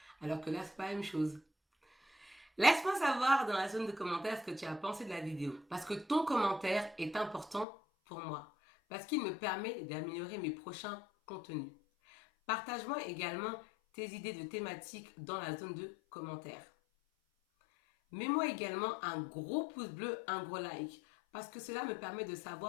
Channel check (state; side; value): drops out; right; at 7.7 s